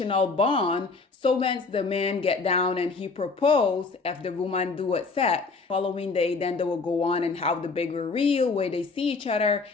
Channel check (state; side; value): quieter; right; 4.2 dB